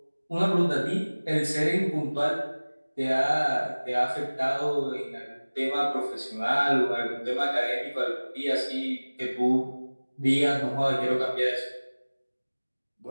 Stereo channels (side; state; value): both; inverted; correlation -1.00